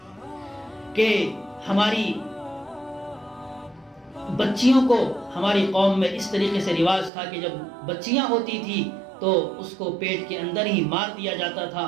کہ ہماری بچیوں کو ہماری قوم میں اس طریقے سے رواج تھا کہ جب بچیاں ہوتی تھی تو اس کو پیٹ کے اندر ہی مار دیا جاتا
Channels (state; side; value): drops out; left; at 7.1 s